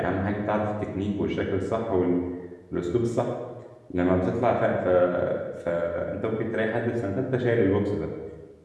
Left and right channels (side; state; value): both; identical; correlation 1.00